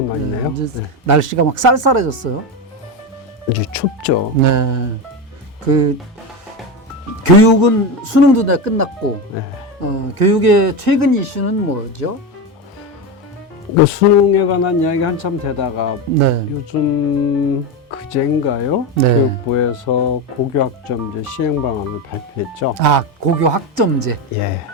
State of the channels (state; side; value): normal; both; correlation 0.16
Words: 이제 날씨가 막 쌀쌀해졌어요. 이제 춥죠. 네. 그 교육은 수능도 다 끝났고 네. 교육의 최근 이슈는 뭐죠? 그 수능에 관한 이야기 한참 되다가 네. 요즘 그제인가요? 네. 교육부에서 고교학점제 시행 방안을 발표했죠. 고교 학점제. 예.